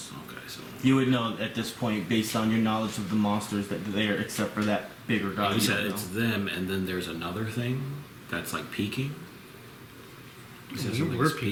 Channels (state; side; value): identical; both; correlation 1.00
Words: Okay, so. You would know at this point, based on your knowledge of the monsters, that they're except for that bigger guy. You you said don't it's know. them, and then there's another thing that's like peeking. You said We something's were